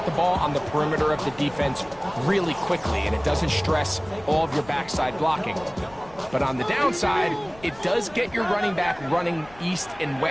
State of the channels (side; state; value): left; noise; rumble, 22 dB below the sound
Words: the ball on the perimeter of the defense really quickly, and it doesn't stress all of your backside blocking. But on the downside, it does get your running back running east and